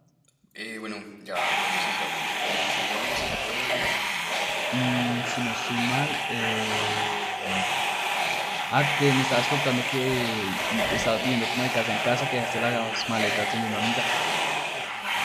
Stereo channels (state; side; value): identical; both; correlation 1.00